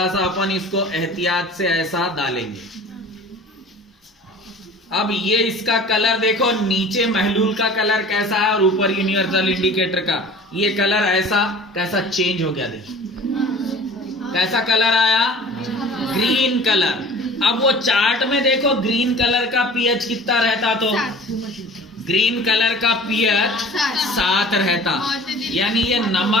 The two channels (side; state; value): both; normal; correlation 0.43